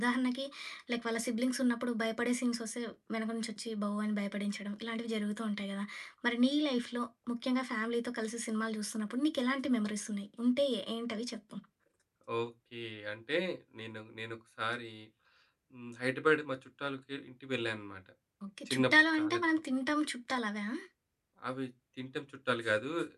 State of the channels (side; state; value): both; identical; correlation 1.00